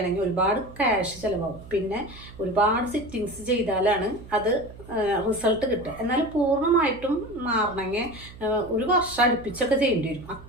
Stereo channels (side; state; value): right; noise; hum, 18 dB below the sound